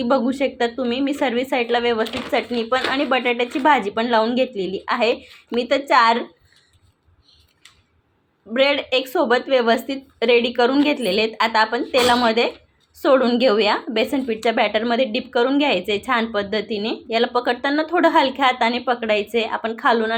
बघू शकता तुम्ही। मी सर्व साईडला व्यवस्थित चटणी पण आणि बटाट्याची भाजी पण लावून घेतलेली आहे। मी तर 4 ब्रेड एक सोबत व्यवस्थित रेडी करून घेतलेले आहेत। आता आपण तेलामध्ये सोडून घेऊया। बेसन पीठच्या बॅटरमध्ये डिप करून घ्यायचे छान पद्धतीने। याला पकडताना थोडं हलक्या हाताने पकडायचे। आपण खालून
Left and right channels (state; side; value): identical; both; correlation 1.00